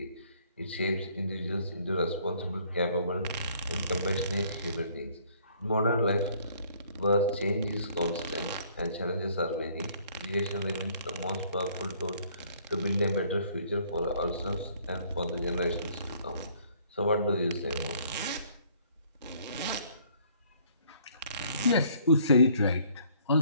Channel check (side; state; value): both; inverted; correlation -0.61